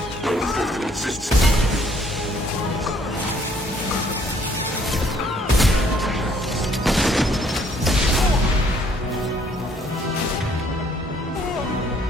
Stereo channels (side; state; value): both; normal; correlation 0.63